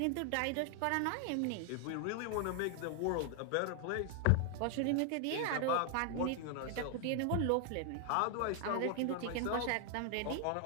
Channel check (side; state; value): both; different; correlation 0.00